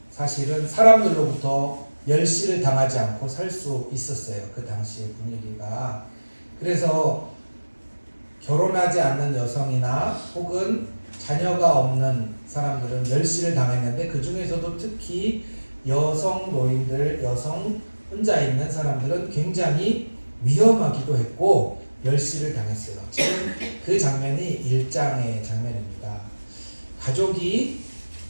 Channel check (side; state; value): both; inverted; correlation -1.00